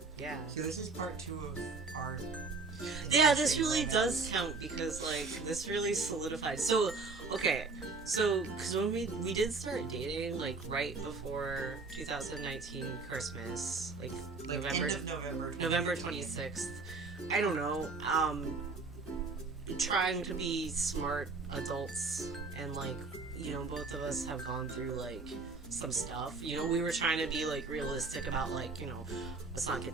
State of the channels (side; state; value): left; quieter; 4.0 dB